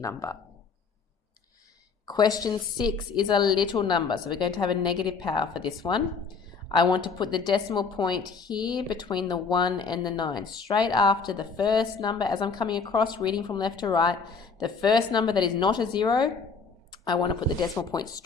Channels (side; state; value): right; quieter; 5.2 dB